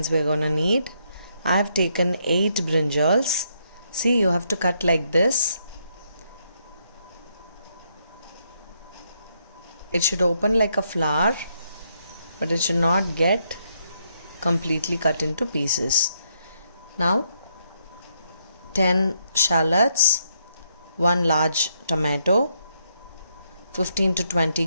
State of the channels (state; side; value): inverted; both; correlation -0.76